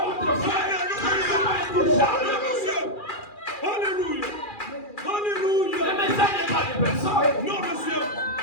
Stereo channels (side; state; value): right; late; 2.4 ms